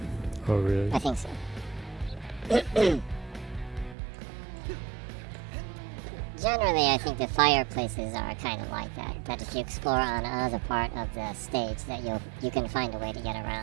Oh, really? I think so. Generally, I think the fireplaces are kind of like that. That if you explore on another part of the stage, that you can find a way to get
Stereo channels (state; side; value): drops out; left; at 4.0 s